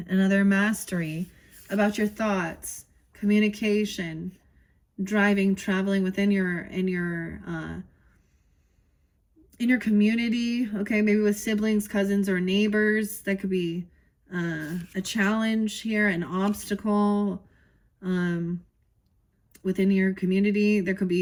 Another mastery about your thoughts, communication, driving, traveling within your community. Okay, maybe with siblings, cousins, or neighbors. That could be a challenge here, an obstacle within your community. There could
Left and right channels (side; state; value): both; identical; correlation 1.00